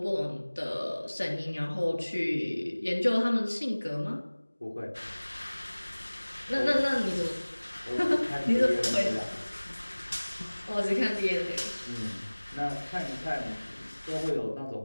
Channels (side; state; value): both; inverted; correlation -1.00